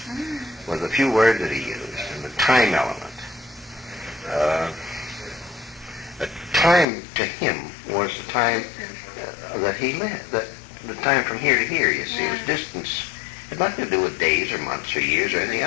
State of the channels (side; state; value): right; drops out; at 6.9 s